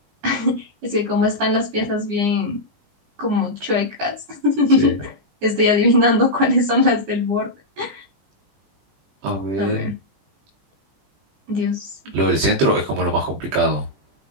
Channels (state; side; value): late; left; 20 ms